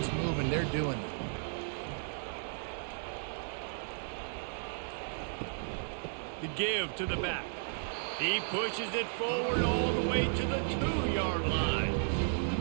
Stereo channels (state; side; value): silent; left; digital silence